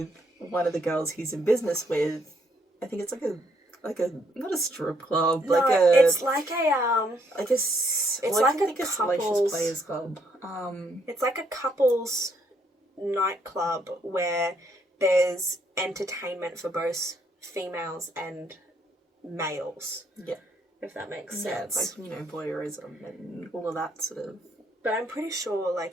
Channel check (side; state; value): both; normal; correlation 0.71